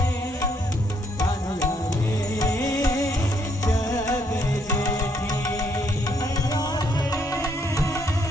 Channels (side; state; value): both; normal; correlation 0.71